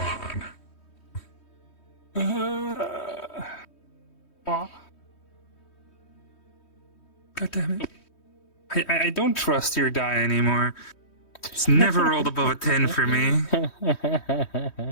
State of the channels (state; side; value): late; right; 3.1 ms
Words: on. God damn it. I don't trust your die anymore. It's never rolled above a 10 for me.